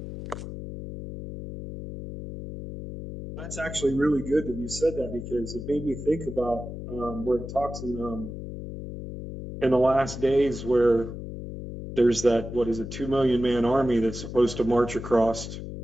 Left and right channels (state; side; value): noise; left; hum, 9 dB below the sound